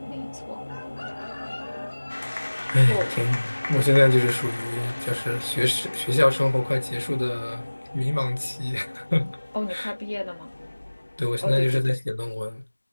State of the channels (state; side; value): inverted; both; correlation -1.00